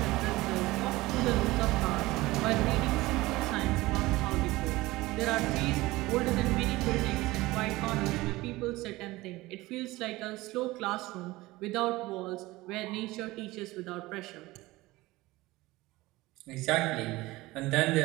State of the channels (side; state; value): left; quieter; 19.6 dB